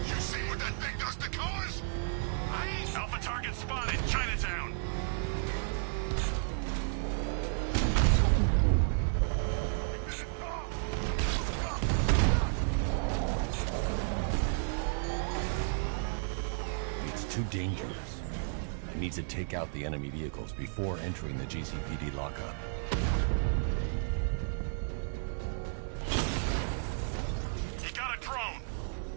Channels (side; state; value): left; silent; digital silence